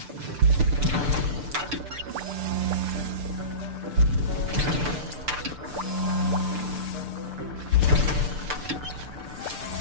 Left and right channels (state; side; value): late; left; 6.8 ms